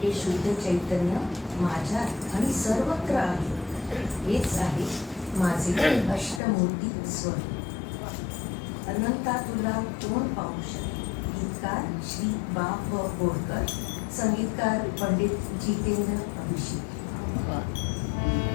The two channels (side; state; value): right; drops out; at 6.4 s